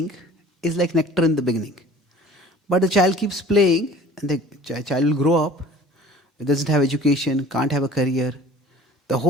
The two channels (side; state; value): both; normal; correlation 0.47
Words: is like nectar in the beginning. But the child keeps playing, and the child will grow up, it doesn't have education, can't have a career. The